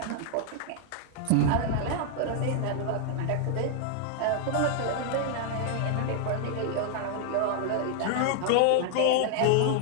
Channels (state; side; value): different; both; correlation 0.00